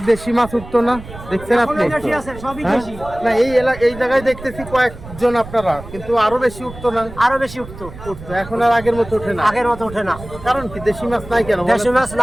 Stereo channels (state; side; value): noise; right; rumble, 15 dB below the sound